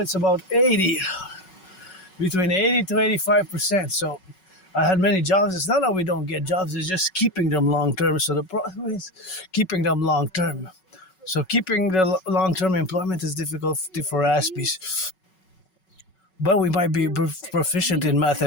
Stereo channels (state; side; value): late; right; 5.4 ms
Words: about between 80 to 85%. So I had many jobs. It's not that we don't get jobs, it's just keeping them long term. So the problem is keeping them long term. So keeping the long term employment is difficult for Aspies. But we might be proficient in